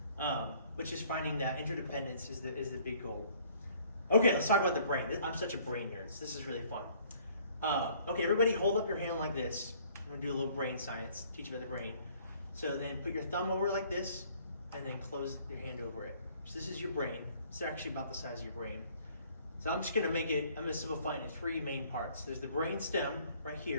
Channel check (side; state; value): both; inverted; correlation -0.58